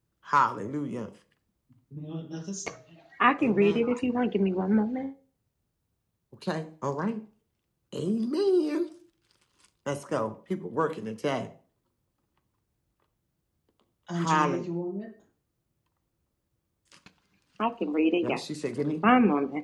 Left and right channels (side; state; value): both; identical; correlation 1.00